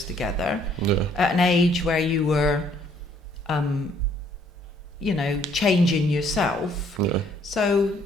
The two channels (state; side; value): normal; both; correlation 0.64